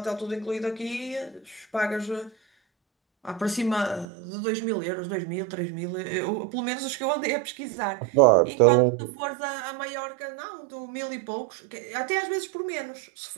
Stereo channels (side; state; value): left; drops out; at 4.0 s